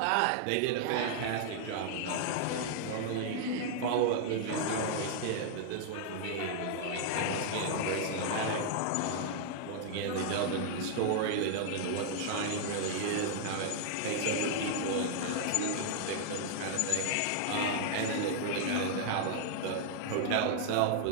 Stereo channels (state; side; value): different; both; correlation -0.01